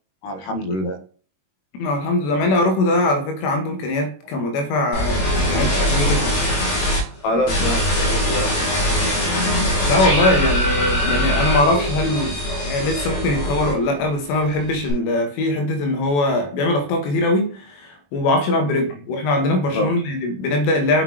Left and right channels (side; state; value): right; late; 21 ms